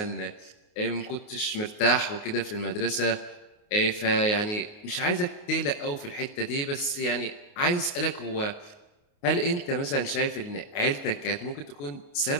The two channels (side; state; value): right; late; 29 ms